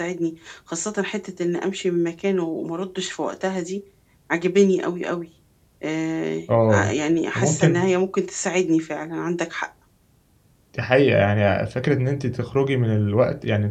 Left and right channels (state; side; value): identical; both; correlation 1.00